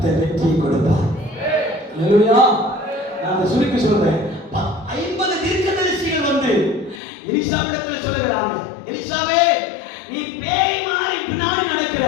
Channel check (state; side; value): drops out; right; at 7.0 s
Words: வெற்றியை கொடுப்பார். அல்லேலூயா. நான் சுருக்கி சொல்றேன். 50 தீர்க்கதரிசிகள் வந்து எலிசாவிடத்தில் சொல்லுகிறாங்க, எலிசாவே, நீ பேய் மாதிரி பின்னாடி நடக்கிற,